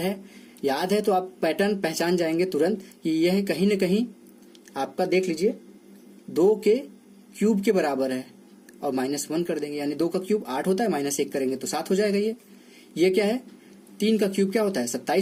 याद है, तो आप पैटर्न पहचान जाएंगे तुरंत कि यह कहीं न कहीं आपका देख लीजिए 2 के क्यूब के बराबर है, और -1 कर देंगे, यानी 2 का क्यूब 8 होता है, -1 करेंगे तो 7 हो जाएगा। ये क्या है 3 का क्यूब क्या होता है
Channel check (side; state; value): both; identical; correlation 1.00